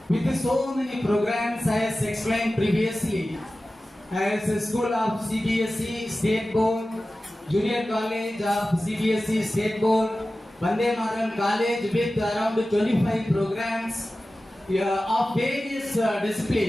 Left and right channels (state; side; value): normal; both; correlation 0.95